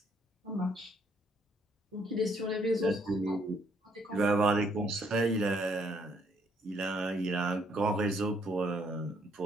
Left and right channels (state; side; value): normal; both; correlation 0.69